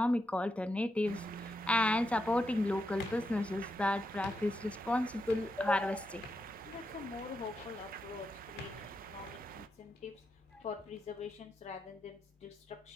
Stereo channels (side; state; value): both; normal; correlation 0.85